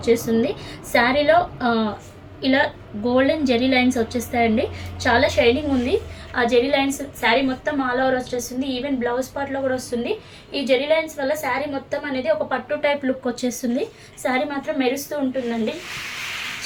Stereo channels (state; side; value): identical; both; correlation 1.00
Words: శారీలో ఇలా గోల్డెన్ జెరీ లైన్స్ వచ్చేస్తాయండి. చాలా షైనింగ్ ఉంది. ఆ జెరీ లైన్స్ శారీ మొత్తం ఆల్ ఓవర్ వచ్చేస్తుంది. ఈవెన్ బ్లౌజ్ పార్ట్లో కూడా వస్తుంది. ఈ జెరీ లైన్స్ వల్ల శారీ మొత్తం అనేది ఒక పట్టు టైప్ లుక్ వచ్చేస్తుంది. శారీ మాత్రం మెరుస్తూ ఉంటుందండి.